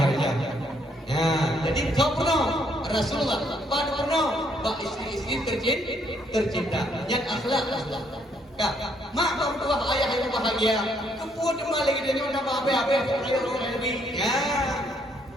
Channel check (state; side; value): normal; both; correlation 0.70